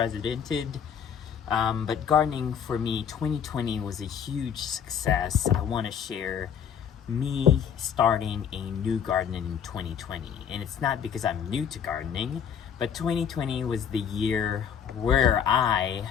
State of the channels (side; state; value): right; quieter; 8.0 dB